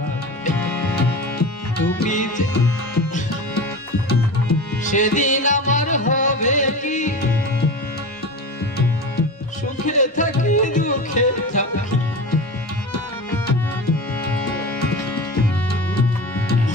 তুমি সেদিন আমার হবে কি সুখে থাকি দুঃখে থাকি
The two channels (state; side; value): normal; both; correlation 0.29